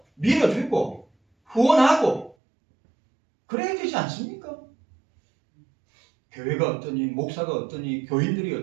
밀어주고 후원하고 그래야 되지 않습니까? 교회가 어떠니, 목사가 어떠니, 교인들이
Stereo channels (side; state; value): left; drops out; at 2.4 s